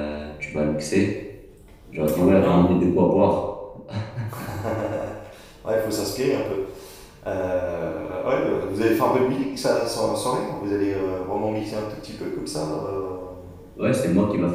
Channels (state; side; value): identical; both; correlation 1.00